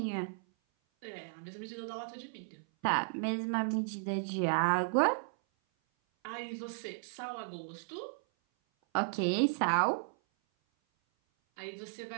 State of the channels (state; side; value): silent; left; 54 dB below the other